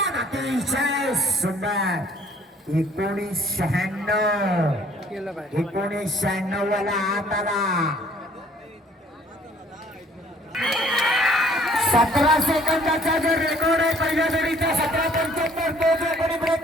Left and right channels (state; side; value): normal; both; correlation 0.58